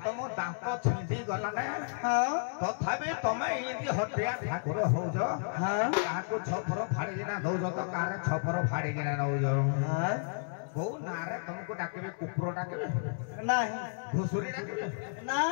तुम दांत छिंदी गला ने तथापि तमे एंदी हटिया ठाकुर होज काको छपर फाड़ी किना दौज तो कारे छपर फाड़ी किना नौज को नारे तुमको डाकेबे कुकुर डाकेबे नहीं घुसुरी डाकेबे ना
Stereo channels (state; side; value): silent; right; 56 dB below the other